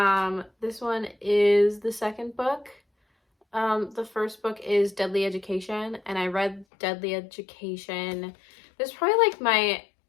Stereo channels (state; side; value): drops out; right; at 6.7 s